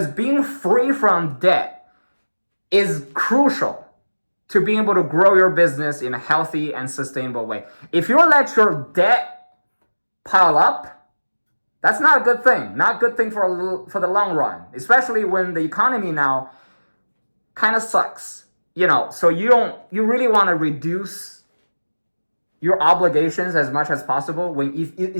being free from debt is crucial to being able to grow your business in a healthy and sustainable way. If you let your debt pile up, that's not a good thing. Not a good thing for the long run, especially when the economy now kind of sucks. So you really want to reduce your obligations as much as possible,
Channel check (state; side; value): inverted; both; correlation -1.00